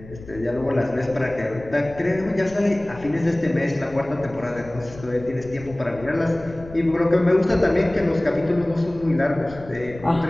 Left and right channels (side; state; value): left; noise; rumble, 18 dB below the sound